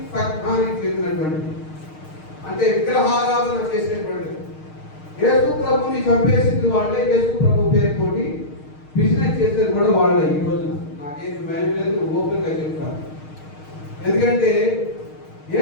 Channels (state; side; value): late; right; 6.5 ms